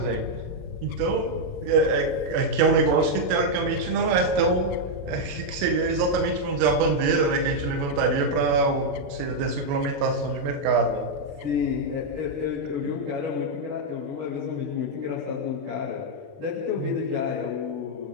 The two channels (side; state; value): left; late; 28 ms